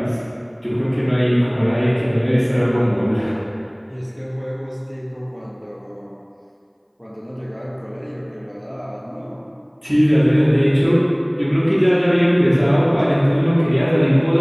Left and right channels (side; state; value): both; identical; correlation 1.00